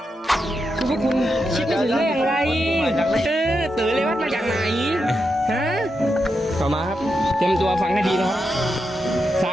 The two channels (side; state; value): both; normal; correlation 0.86